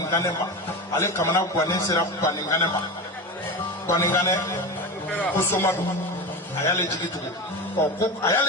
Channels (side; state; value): both; normal; correlation 0.23